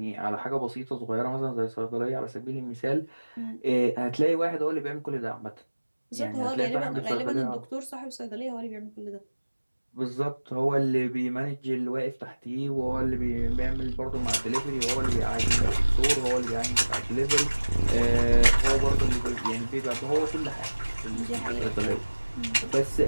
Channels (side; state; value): both; inverted; correlation -1.00